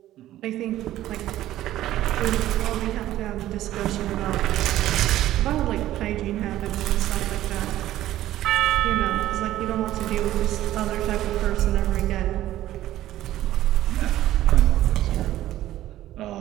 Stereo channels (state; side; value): quieter; left; 14.0 dB